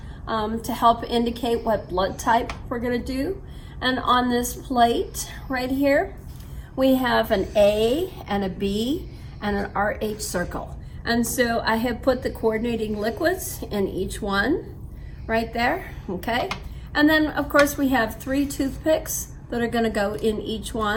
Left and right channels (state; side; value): identical; both; correlation 1.00